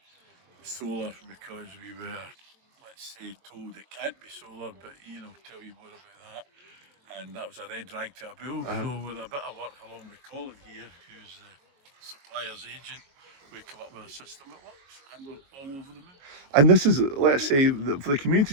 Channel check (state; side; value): late; left; 22 ms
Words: solar because we were, let's say, told it can't be solar, but tell you more about that. And that was a red rag to a bull. So with a bit of work along with Colin here, who's the supplier's agent, we come up with a system that works, and we're all over the moon. And this is, let's say, for the community